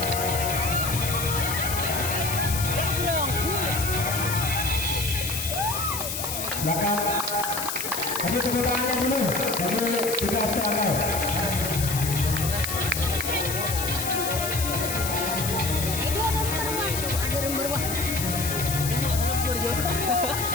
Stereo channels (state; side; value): noise; left; hiss, 4 dB below the sound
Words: Silakan. Kasih tepuk tangannya dulu bagi tugas serangkai.